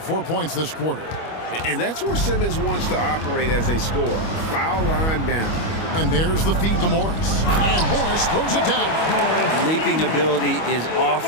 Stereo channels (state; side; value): late; right; 25 ms